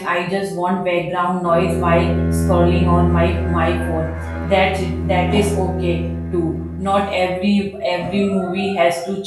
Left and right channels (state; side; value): identical; both; correlation 1.00